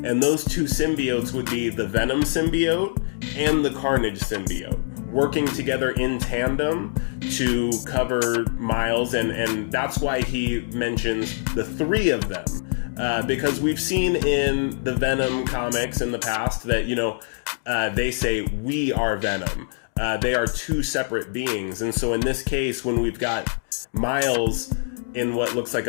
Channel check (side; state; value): right; silent; digital silence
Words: And those two symbiotes would be the Venom symbiote and the Carnage symbiote, working together in tandem to cover Miles. And that's why he mentions the three of them. Because we've seen in the Venom comics in the past that, you know, they say, "We are Venom." They are two separate beings. And so in this case, when we've got Miles in what looks like